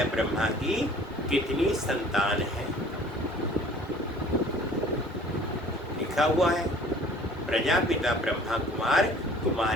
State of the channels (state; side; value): normal; both; correlation 0.51